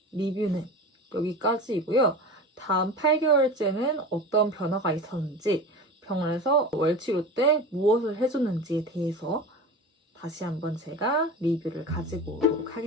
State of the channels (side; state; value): both; normal; correlation 0.30